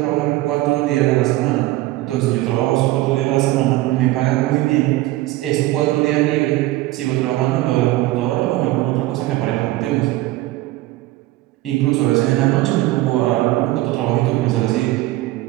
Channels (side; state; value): left; quieter; 17.5 dB